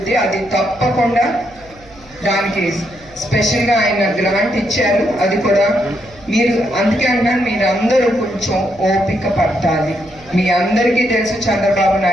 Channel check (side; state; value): right; noise; hum, 25 dB below the sound